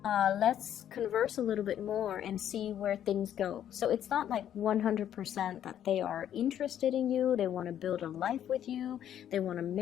Let's converse a little bit more and see where things go. So it's not like 100% that they are interested in you, they want to build a life with you, they want to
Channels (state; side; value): quieter; right; 10.4 dB